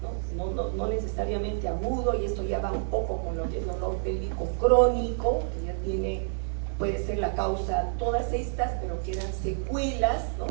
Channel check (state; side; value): silent; left; digital silence